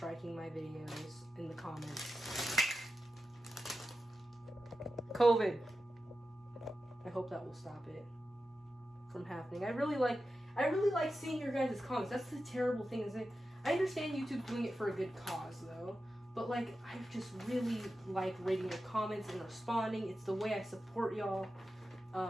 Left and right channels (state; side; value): normal; both; correlation 0.92